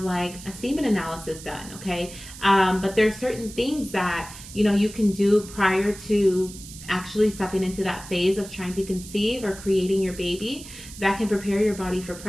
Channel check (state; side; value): noise; right; hiss, 15 dB below the sound